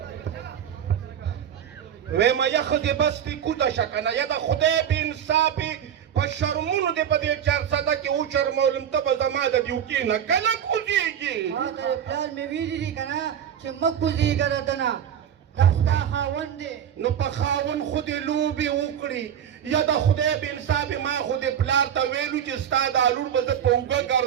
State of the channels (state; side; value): quieter; left; 9.2 dB